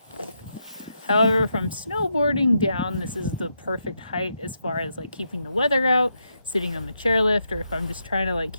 However, from snowboarding down, this is the perfect height as far as like keeping the weather out, sitting on the chairlift, or if I'm just trying to like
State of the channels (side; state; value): both; inverted; correlation -0.82